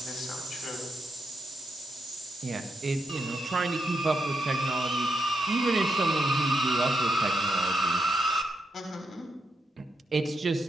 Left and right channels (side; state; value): both; normal; correlation 0.82